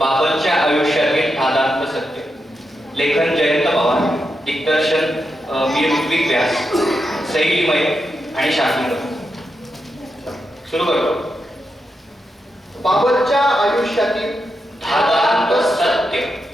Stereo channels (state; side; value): normal; both; correlation 0.86